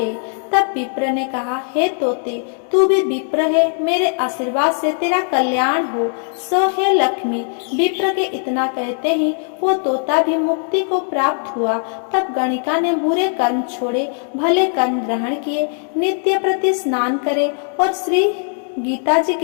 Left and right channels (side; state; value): right; silent; 58 dB below the other